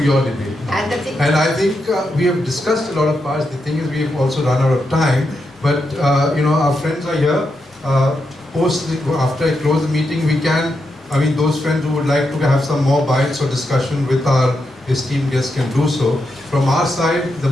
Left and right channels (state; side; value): normal; both; correlation 0.85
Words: your debate. And I think we have discussed a lot of parts. The thing is, we have also run out of time, but our friends are here. After I close the meeting, those friends who would like to have some more bites or discussion with our esteemed guests can do so. From our side, the